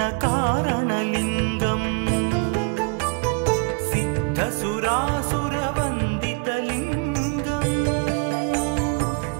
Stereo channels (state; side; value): quieter; left; 32.7 dB